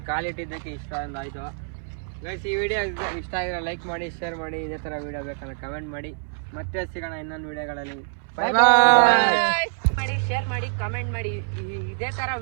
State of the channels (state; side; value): silent; left; 61 dB below the other